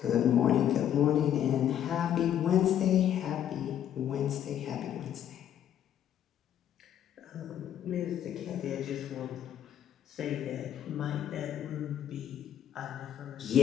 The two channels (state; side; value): quieter; right; 10.3 dB